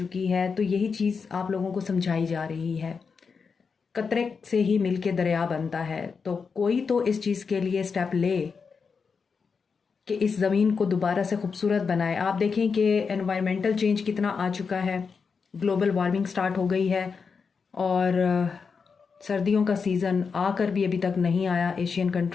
है। तो यही चीज़ आप लोगों को समझाई जा रही है। कतरे से ही मिल के दरिया बनता है, तो कोई तो इस चीज़ के लिए स्टेप ले कि इस ज़मीन को दोबारा से खूबसूरत बनाए। आप देखें कि एनवायरमेंटल चेंज कितना आ चुका है, ग्लोबल वार्मिंग स्टार्ट हो गई है और सर्दियों का सीज़न आकर भी अभी तक नहीं आया एशियन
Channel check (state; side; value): quieter; right; 5.4 dB